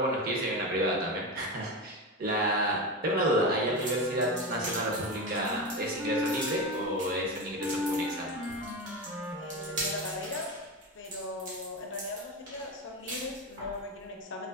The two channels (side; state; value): both; normal; correlation 0.20